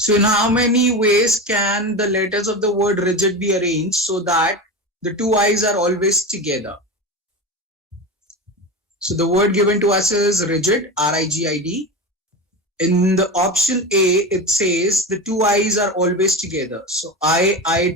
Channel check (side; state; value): both; normal; correlation 0.24